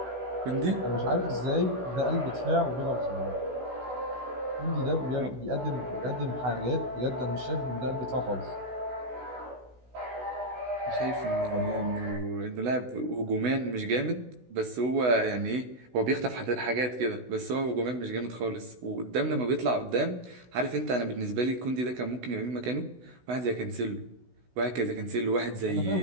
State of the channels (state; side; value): late; left; 16 ms